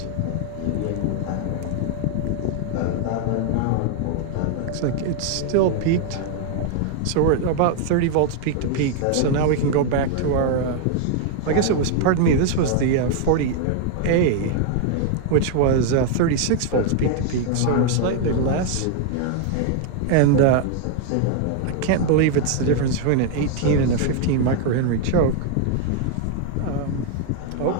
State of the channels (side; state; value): both; different; correlation 0.00